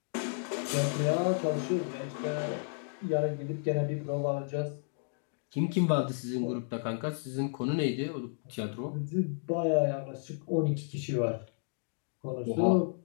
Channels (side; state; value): right; silent; digital silence